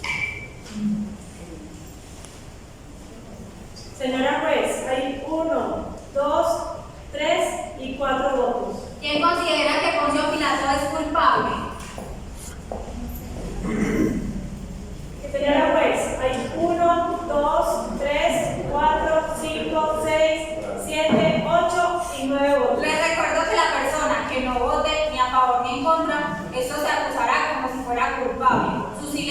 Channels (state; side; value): identical; both; correlation 1.00